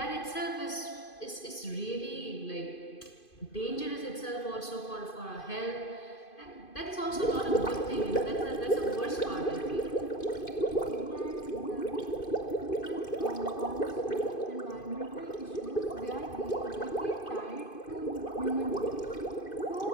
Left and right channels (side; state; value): right; late; 2.5 ms